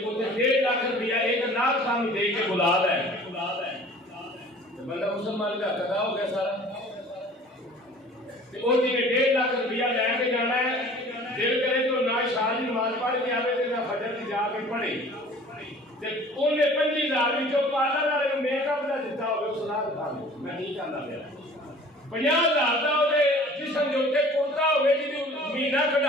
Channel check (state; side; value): normal; both; correlation 0.47